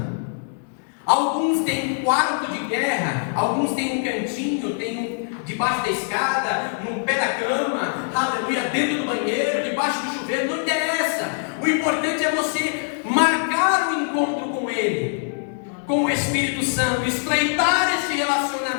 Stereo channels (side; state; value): right; silent; digital silence